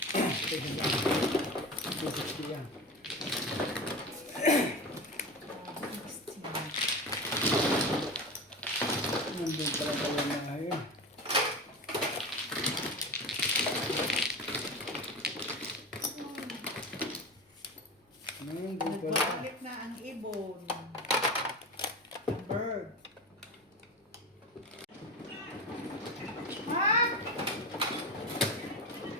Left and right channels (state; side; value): normal; both; correlation 0.27